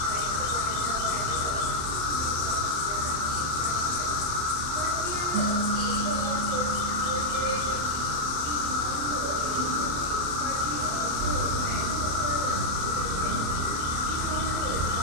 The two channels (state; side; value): late; left; 27 ms